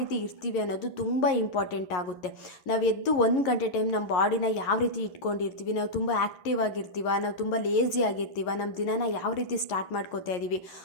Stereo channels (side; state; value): right; late; 11 ms